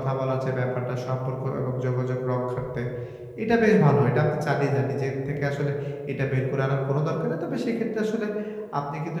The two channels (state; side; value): identical; both; correlation 1.00